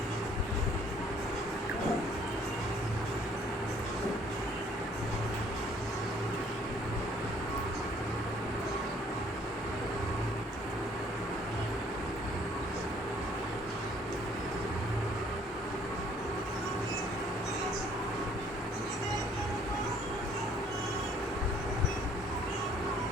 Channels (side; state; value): both; normal; correlation 0.60